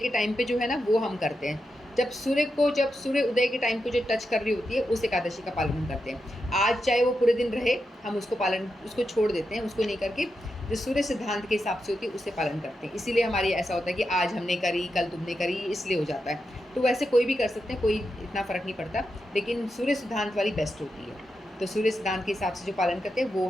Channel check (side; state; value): both; normal; correlation 0.87